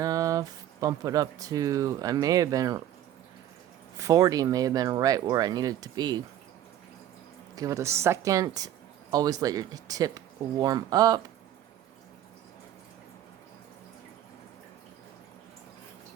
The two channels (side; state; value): left; quieter; 11.7 dB